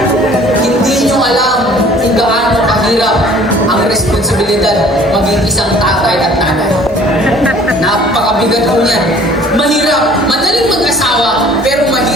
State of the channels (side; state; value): both; normal; correlation 0.52